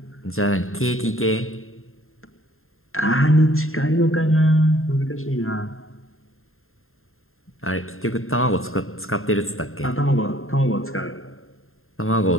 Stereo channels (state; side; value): late; right; 0.61 ms